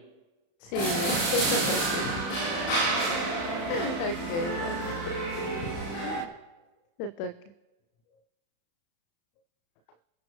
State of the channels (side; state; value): right; late; 35 ms